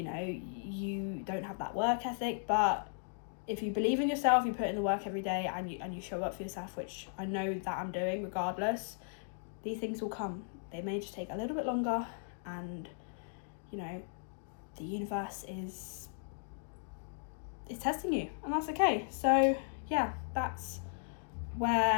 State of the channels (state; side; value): silent; right; digital silence